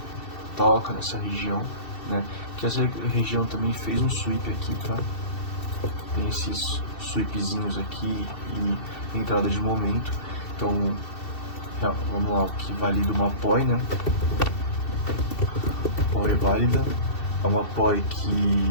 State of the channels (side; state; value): right; late; 2.7 ms